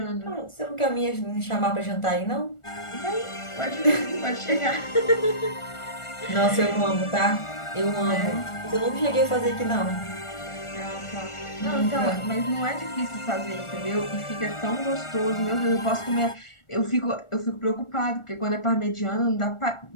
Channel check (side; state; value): right; late; 1.4 ms